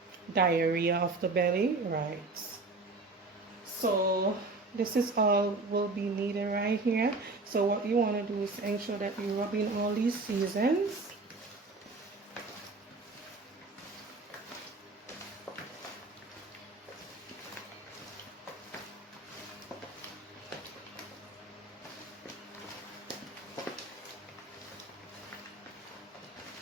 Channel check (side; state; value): left; quieter; 3.4 dB